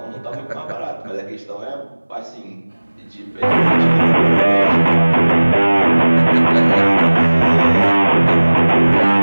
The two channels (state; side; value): inverted; both; correlation -1.00